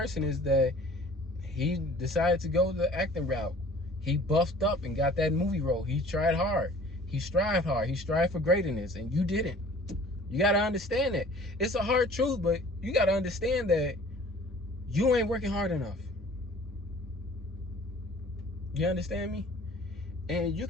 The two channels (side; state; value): both; normal; correlation 0.49